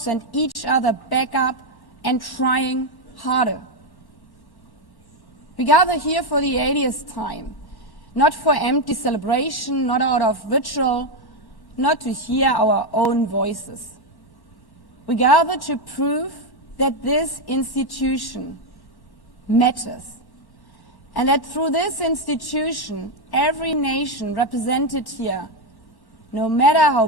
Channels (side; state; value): right; late; 1.1 ms